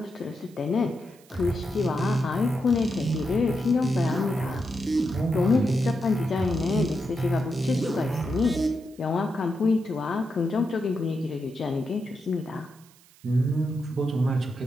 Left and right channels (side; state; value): right; noise; hiss, 27 dB below the sound